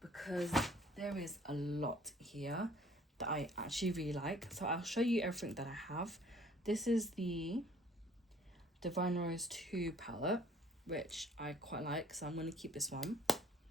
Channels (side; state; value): both; normal; correlation 0.56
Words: Because there is a lot here that I actually really like. So I'll show you everything that I have. This is the Divine Rose 2 palette, which I quite like, so I'm going to keep this one.